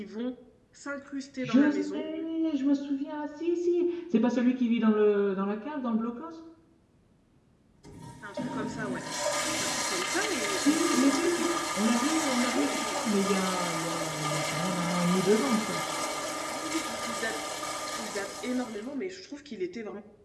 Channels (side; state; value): both; identical; correlation 1.00